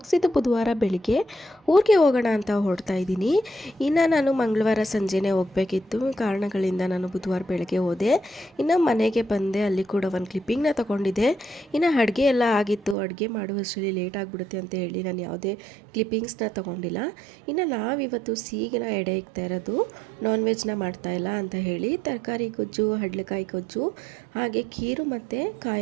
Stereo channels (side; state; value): left; drops out; at 13.0 s